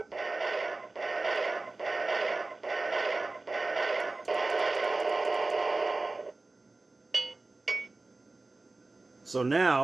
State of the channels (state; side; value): quieter; left; 3.3 dB